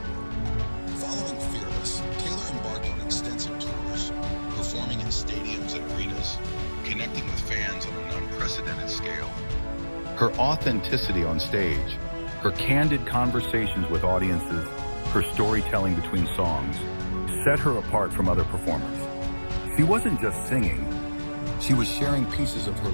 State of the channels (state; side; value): inverted; both; correlation -1.00